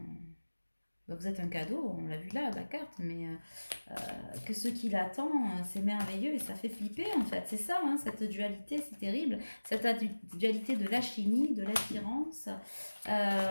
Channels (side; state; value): both; inverted; correlation -1.00